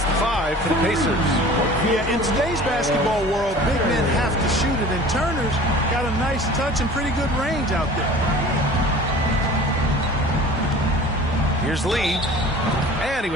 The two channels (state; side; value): normal; both; correlation 0.43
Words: the 5 for the Pacers. Yeah, in today's basketball world, big men have to shoot it. And Turner's got a nice touch and pretty good range out there. Here's Lee. And he